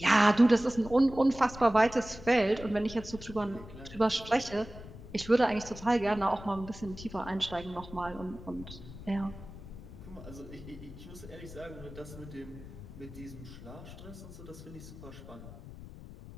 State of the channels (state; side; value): noise; left; rumble, 14 dB below the sound